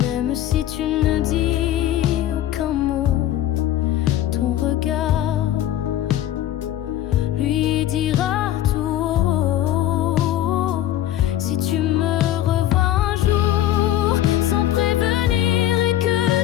si tu ne dis aucun mot, ton regard lui dira tout haut. Si tu me revois un jour sans prévenir et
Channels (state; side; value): quieter; right; 12.6 dB